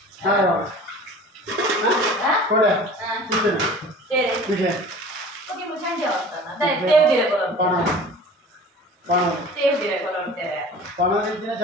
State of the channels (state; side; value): normal; both; correlation 0.42